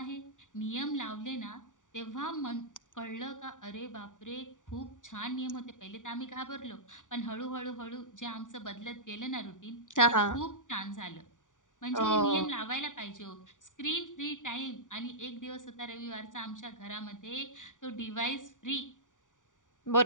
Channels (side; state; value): right; late; 0.87 ms